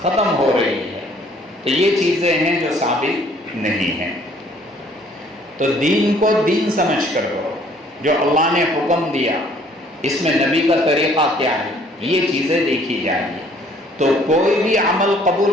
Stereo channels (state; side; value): normal; both; correlation 0.59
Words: ختم ہو رہی ہے۔ تو یہ چیزیں ہیں جو ثابت نہیں ہیں۔ تو دین کو دین سمجھ کر کرو، جو اللہ نے حکم دیا اس میں نبی کا طریقہ کیا ہے، یہ چیزیں دیکھی جائیں گی۔ تو کوئی بھی عمل قبول